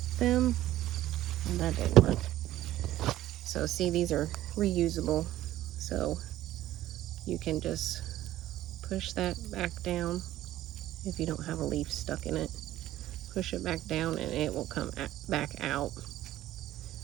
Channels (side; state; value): left; quieter; 14.2 dB